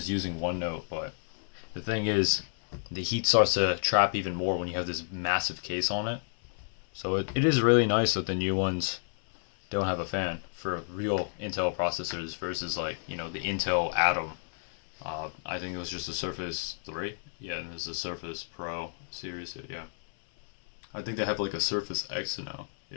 using OneNote. But the thing is, the heat starts to trap even more when you have this massive case on it. So it is really nice that the new ones don't have a fan for real Intel processors versus like, you know, the Intel Atom. I think it was just a Surface 3. Yeah, and there's a Surface Pro series. Yeah. I think they have like a Surface X now.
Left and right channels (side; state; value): right; silent; 57 dB below the other